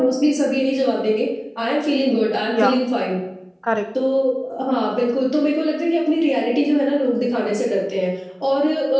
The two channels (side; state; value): both; identical; correlation 1.00